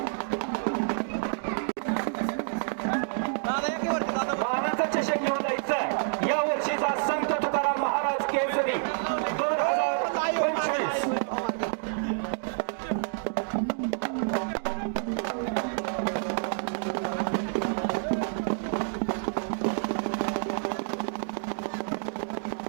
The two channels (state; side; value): silent; left; digital silence